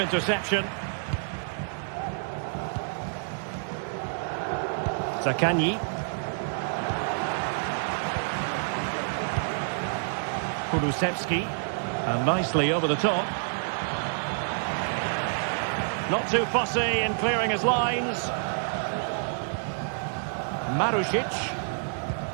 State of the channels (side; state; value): left; silent; digital silence